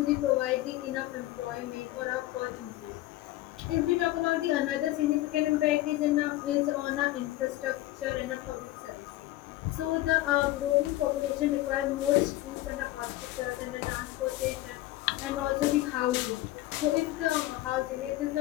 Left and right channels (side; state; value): right; quieter; 16.6 dB